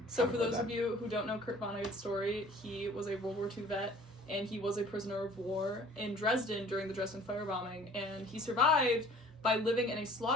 So for those of you who don't know Kurt Vonnegut's story, he was a World War II vet, and he was a prisoner of war in Dresden during the Dresden firebombing, and he survived by living in a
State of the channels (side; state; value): both; normal; correlation 0.50